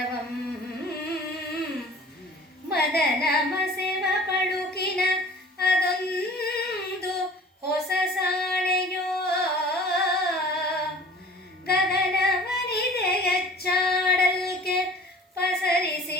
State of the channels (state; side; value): normal; both; correlation 0.46